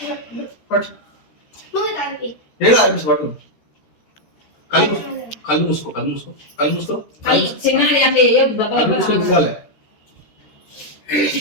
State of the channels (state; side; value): late; right; 13 ms